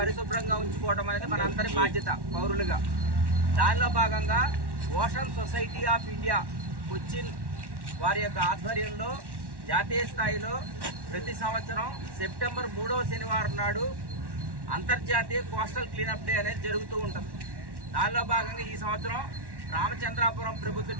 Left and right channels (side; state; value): left; late; 1.1 ms